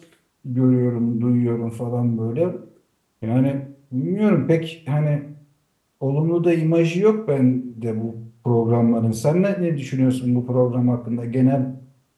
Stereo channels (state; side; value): identical; both; correlation 1.00